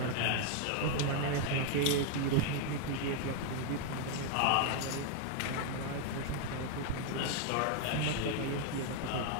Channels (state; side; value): different; both; correlation 0.00